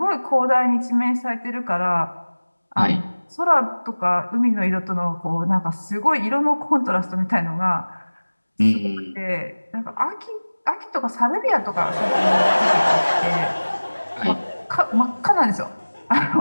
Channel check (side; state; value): both; inverted; correlation -1.00